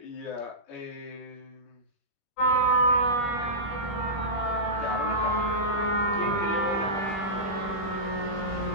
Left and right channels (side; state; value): right; late; 21 ms